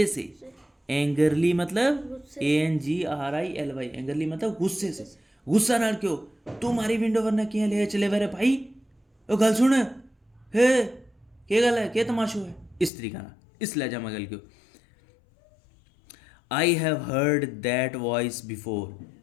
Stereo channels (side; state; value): right; drops out; at 12.9 s